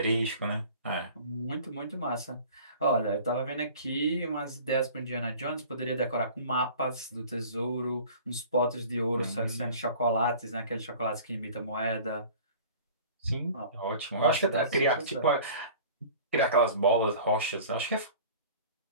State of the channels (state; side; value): inverted; both; correlation -0.44